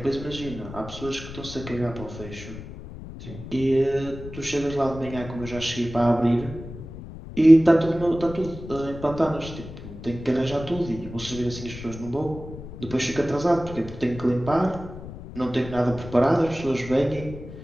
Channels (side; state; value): left; noise; rumble, 12 dB below the sound